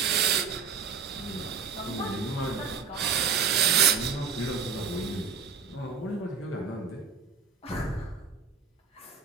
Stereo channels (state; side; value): quieter; left; 6.1 dB